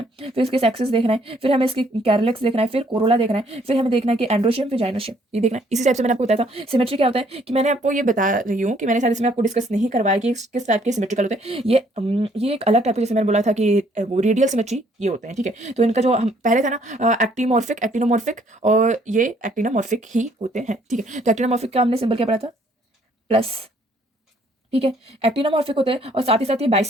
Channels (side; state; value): both; normal; correlation 0.64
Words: फिर इसके सेक्सेस देखना है, फिर हमें इसकी कैरलेक्स देखना है, फिर कोरोला देखना है, फिर हमें देखना है कि एंड्रोशियम फिर जाइनोशियम, ये देखना है। इसी टाइप से मैंने आपको बताया था सिमेट्री क्या होता है, कि मैंने आपको ये बता रही हूँ कि मैंने शायद इसमें आपको डिस्कस नहीं करवाया कि किस टाइप के सिमेट्रिकल होते हैं। ये एक अलग टाइप के, जैसे मैंने बोला था कि वो रेडियल सिमेट्री ये होते हैं, ठीक है। तो इनका जो हम पहले था ना एक्टिमॉर्फिक, एक्टिनोमॉर्फिक, और ये एक्टिनोमॉर्फिक ही होते हैं, ठीक है। तो एक्टिनोमॉर्फिक का हमने सिंबल क्या पढ़ा था, प्लस, ठीक है। एक्टिनोमॉर्फिक होते हैं और साथ ही साथ ये